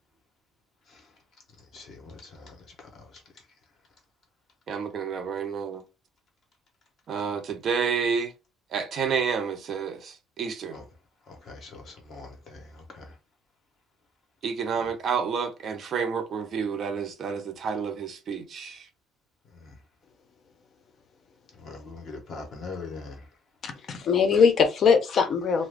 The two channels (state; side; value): normal; both; correlation 0.60